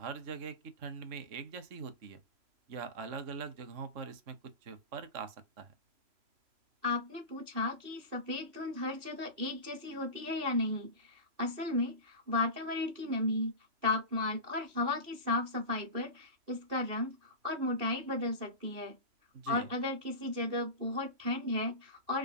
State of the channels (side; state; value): left; late; 3.0 ms